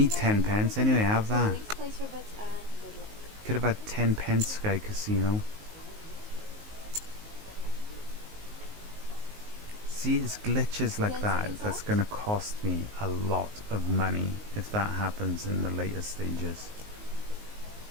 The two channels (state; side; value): late; left; 19 ms